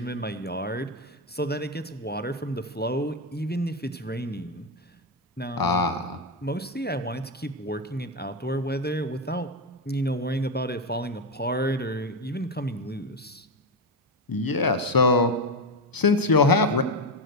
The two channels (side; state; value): both; normal; correlation 0.10